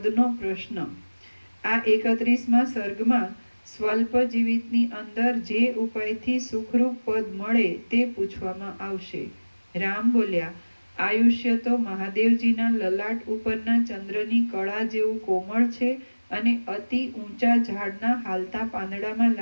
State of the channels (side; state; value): both; inverted; correlation -1.00